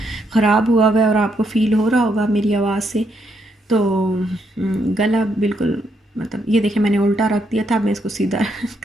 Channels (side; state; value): both; normal; correlation 0.76